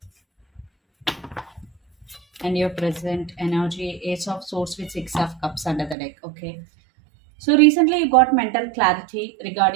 and your present energy, Ace of Swords with Six of Cups under the deck. Okay. So recently you got mental clarity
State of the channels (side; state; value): left; drops out; at 6.0 s